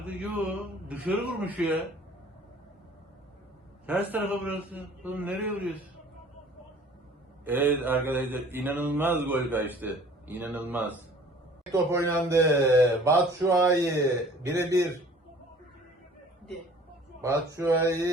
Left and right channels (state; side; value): normal; both; correlation 0.50